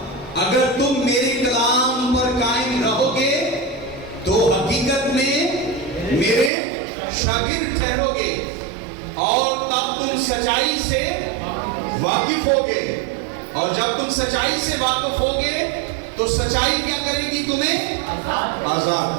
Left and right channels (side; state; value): left; drops out; at 6.5 s